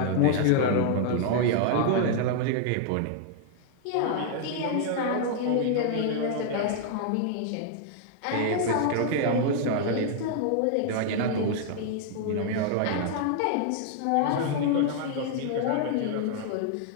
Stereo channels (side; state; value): both; different; correlation 0.00